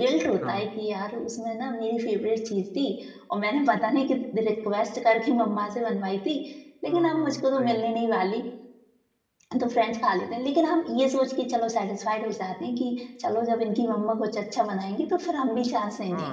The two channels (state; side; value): identical; both; correlation 1.00